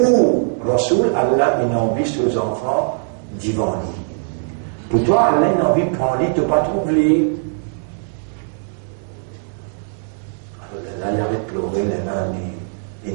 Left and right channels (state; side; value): silent; left; digital silence